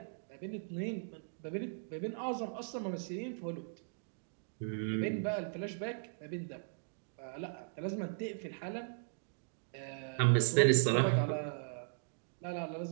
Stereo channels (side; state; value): left; silent; digital silence